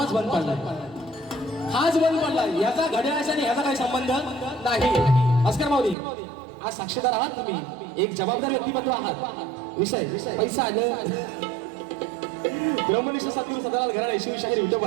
बंद पडला, हाच बंद पडला. याचा घड्याळाचा आणि ह्याचा काही संबंध नाही. भास्कर माऊली आज साक्षीदार आहात तुम्ही, एक जबाबदार व्यक्तिमत्व आहात. विषय पैसा आलं. ब्रह्मनिष्ठ सद्गुरू सदालाल घराणे शिवशाहीर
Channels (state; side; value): drops out; left; at 6.0 s